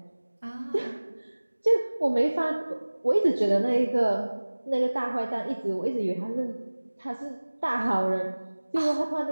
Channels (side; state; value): both; inverted; correlation -1.00